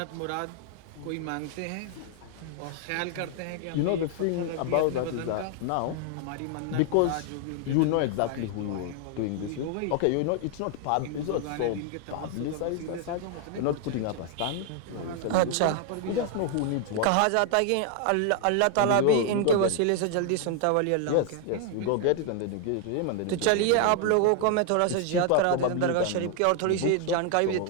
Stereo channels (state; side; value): different; both; correlation 0.00